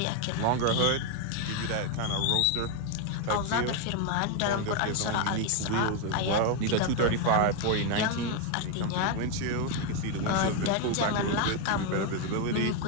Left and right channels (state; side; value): different; both; correlation 0.01